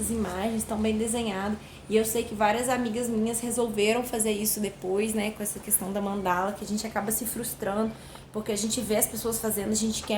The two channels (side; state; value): both; identical; correlation 1.00